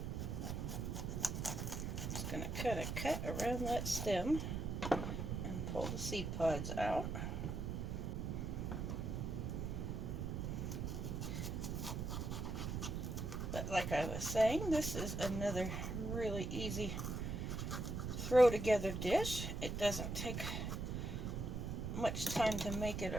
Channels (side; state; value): right; noise; rumble, 2 dB below the sound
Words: Going to cut a cut around that stem and pull the seed pods out. But like I was saying, this is another really easy throw together dish. It doesn't take much time to make it